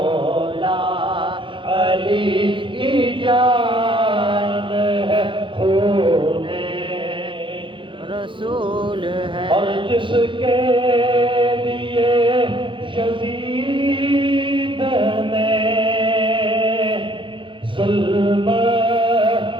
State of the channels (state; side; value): late; left; 0.24 ms